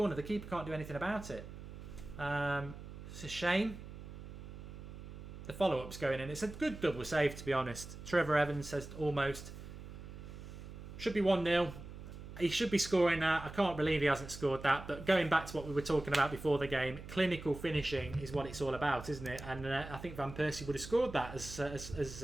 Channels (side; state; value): right; noise; hum, 12 dB below the sound